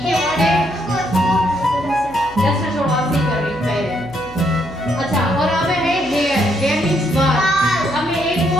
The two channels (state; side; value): noise; left; hum, 19 dB below the sound